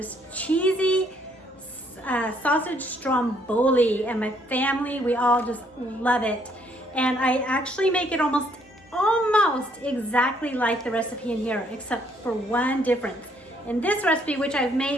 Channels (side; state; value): both; normal; correlation 0.67